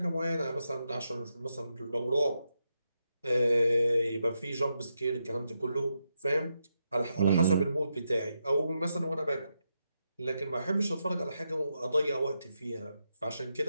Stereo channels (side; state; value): both; inverted; correlation -0.84